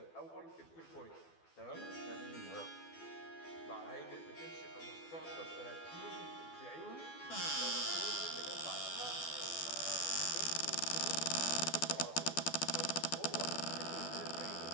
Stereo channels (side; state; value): right; late; 12 ms